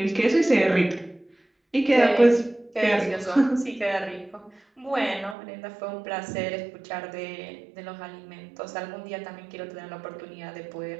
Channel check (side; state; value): left; drops out; at 5.4 s